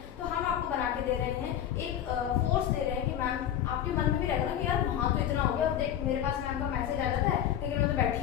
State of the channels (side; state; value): right; quieter; 10.4 dB